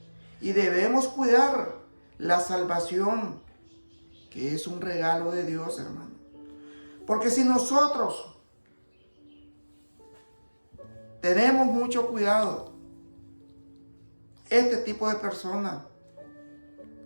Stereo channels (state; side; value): inverted; both; correlation -1.00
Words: y debemos cuidar la salvación, que es un regalo de Dios, hermano. Porque si nosotros tenemos mucho cuidado, este tipo de personas,